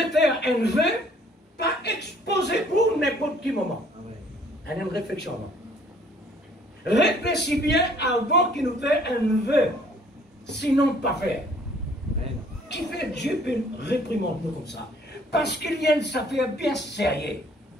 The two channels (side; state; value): both; normal; correlation 0.59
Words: faire un vœu, pas exposé pour n'importe quel moment. Amen. Une réflexion. Réfléchis bien avant qu'il nous fait un vœu, sinon pas faire. Amen. Qui fait Dieu peut réprimander nous comme ça? Parce qu'il y a une affaire bien sérieuse.